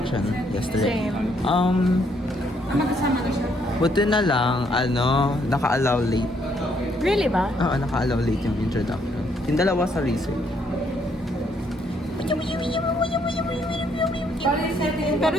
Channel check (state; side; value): normal; both; correlation 0.70